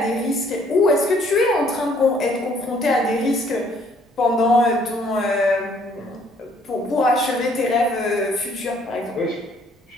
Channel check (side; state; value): both; normal; correlation 0.63